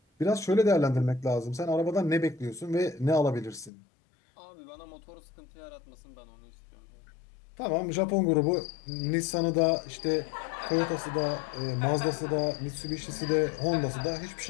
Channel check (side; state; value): right; drops out; at 3.7 s